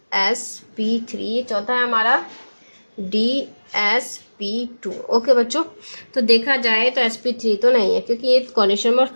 चौथा है हमारा dsp2। ओके बच्चों, तो देखा जाए तो sp3 तो नहीं है क्योंकि ये कोरिलेशन नंबर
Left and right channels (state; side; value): inverted; both; correlation -1.00